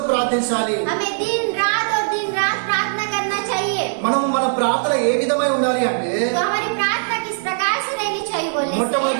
ప్రార్థించాలి. हमें दिन रात प्रार्थना करना चाहिए। మనము మన ప్రార్థన ఏ విధమై ఉండాలి అంటే तो हमारी प्रार्थना किस प्रकार से रहनी चाहिए बोलने से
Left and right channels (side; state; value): left; silent; digital silence